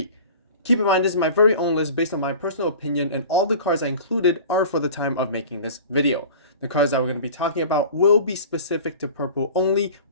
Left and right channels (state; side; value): inverted; both; correlation -0.40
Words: Keep in mind, this is my very own list based on my personal opinion, and all the cards I included are for the time of making this video. The cards that we're going to be talking about will be specific to purple only,